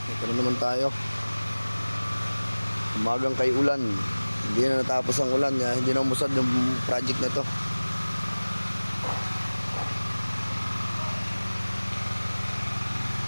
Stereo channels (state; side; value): inverted; both; correlation -1.00